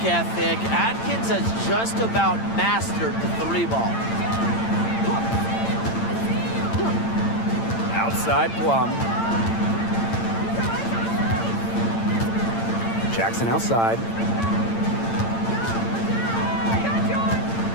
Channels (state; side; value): late; right; 8.8 ms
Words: ethic, Atkins has just about mastered the 3-ball. Outside Plum. Jackson outside.